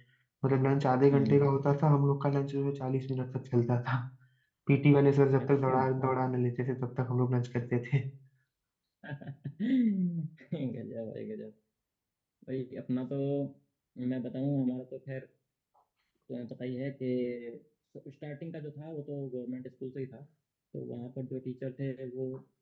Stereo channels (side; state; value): both; identical; correlation 1.00